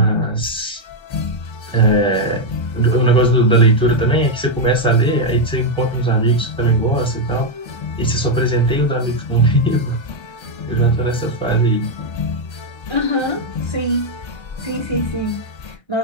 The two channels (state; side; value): late; right; 1.3 ms